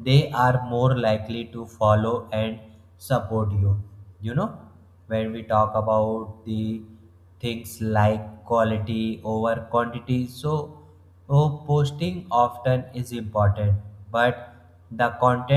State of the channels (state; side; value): identical; both; correlation 1.00